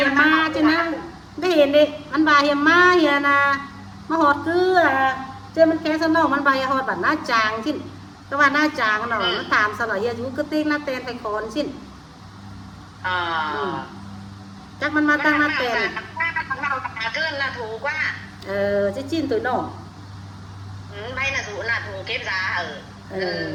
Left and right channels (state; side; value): identical; both; correlation 1.00